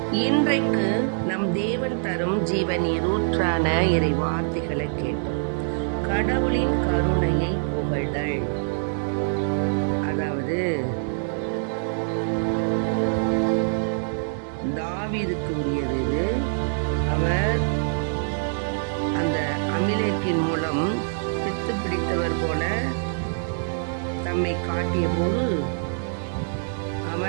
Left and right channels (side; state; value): left; silent; digital silence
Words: இன்றைக்கு நம் தேவன் தரும் ஜீவ நீரூற்றான இறை வார்த்தைகளை கேட்டோம். கடவுளின் கருணையை புகழ்தல், அதாவது தாவீதுக்கு உரியது இது. அவர் அந்த அமிலேக்கின் மூலம் பித்து பிடித்தவர் போல தம்மை காட்டிய போது